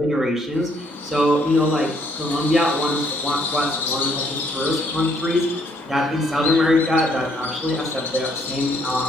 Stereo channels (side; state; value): both; normal; correlation 0.68